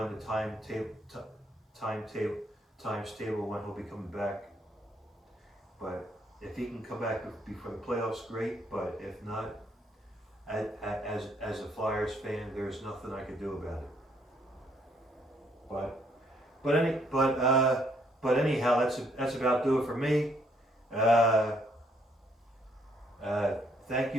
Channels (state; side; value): normal; both; correlation 0.69